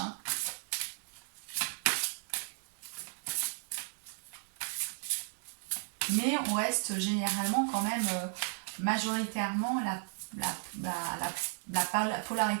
Mais on reste généralement quand même majoritairement la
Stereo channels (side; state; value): left; silent; digital silence